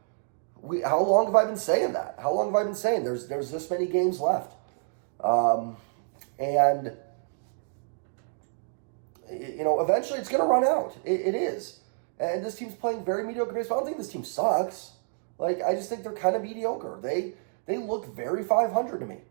how long have I been saying that? How long have I been saying there's this many games left? And eventually it's going to run out. It is. And this team's playing very mediocre baseball. I don't think this team sucks. I just think they're kind of mediocre. They look very 500 to me.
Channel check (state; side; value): silent; left; digital silence